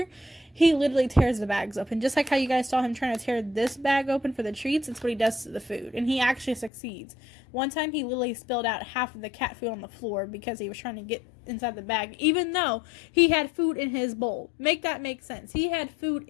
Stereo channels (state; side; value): drops out; right; at 6.7 s